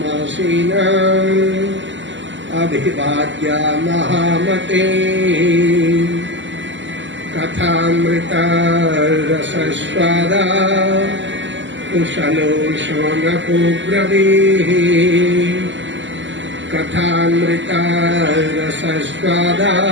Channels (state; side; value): late; left; 0.54 ms